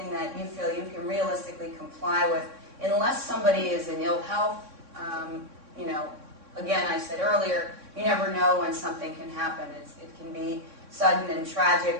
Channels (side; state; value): left; late; 3.6 ms